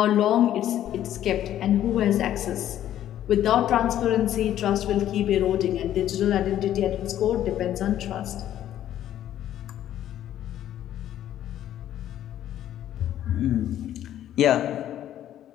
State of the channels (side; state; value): right; quieter; 11.7 dB